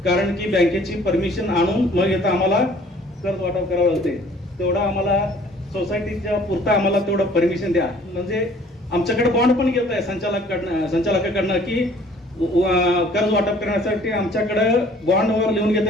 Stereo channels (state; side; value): normal; both; correlation 0.54